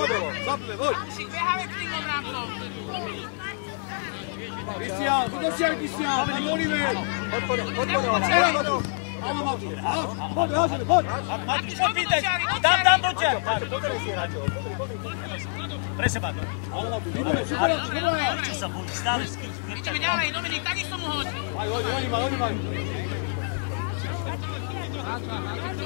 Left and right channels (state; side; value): silent; right; digital silence